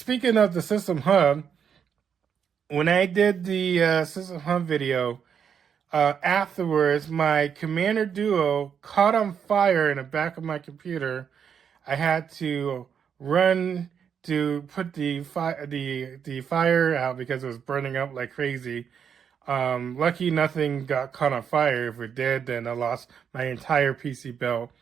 system hub, when I did the system hub video, afterwards my Commander Duo caught on fire in the back of my computer. I had to run to put the fire out because it was burning up like crazy. Lucky nothing got caught on fire. If it did, then I lost my entire PC build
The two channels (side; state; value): left; quieter; 7.5 dB